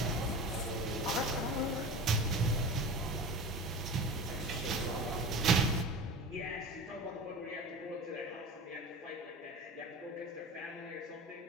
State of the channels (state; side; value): normal; both; correlation 0.33